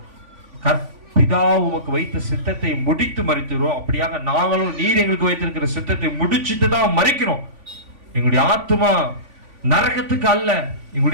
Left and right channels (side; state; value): left; late; 3.5 ms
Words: பிதா உமக்கு வைத்த சித்தத்தை முடித்து மரிக்கிறோம், அப்படியாக நாங்களும் நீர் எங்களுக்கு வைத்திருக்கிற சித்தத்தை முடிச்சுட்டு தான் மரிக்கிறோம். எங்களுடைய ஆத்மா நரகத்துக்கு அல்ல,